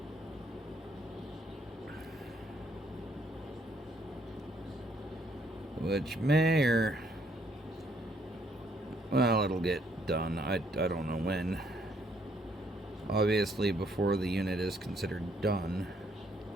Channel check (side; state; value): both; normal; correlation 0.69